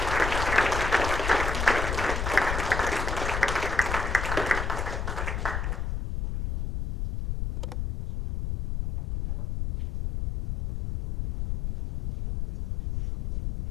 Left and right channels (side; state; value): left; noise; rumble, 2 dB below the sound